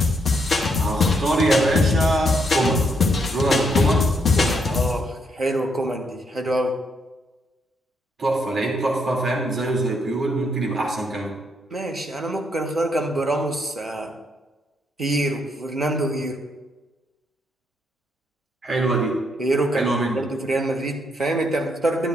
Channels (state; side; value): normal; both; correlation 0.75